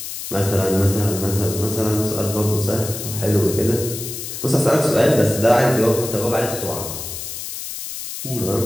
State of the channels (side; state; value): left; noise; hiss, 8 dB below the sound